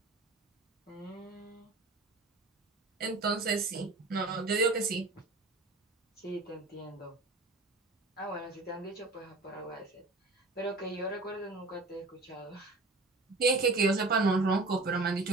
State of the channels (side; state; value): left; quieter; 3.3 dB